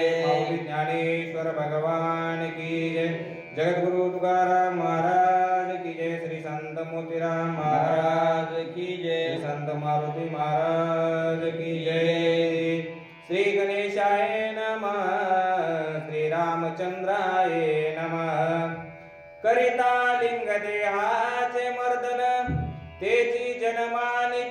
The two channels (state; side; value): identical; both; correlation 1.00